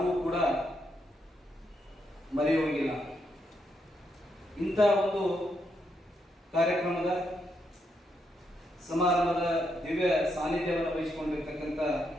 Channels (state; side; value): normal; both; correlation 0.79